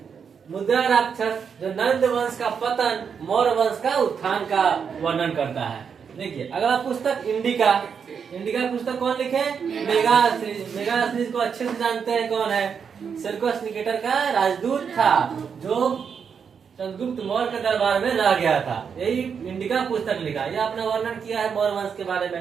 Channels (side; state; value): left; quieter; 6.7 dB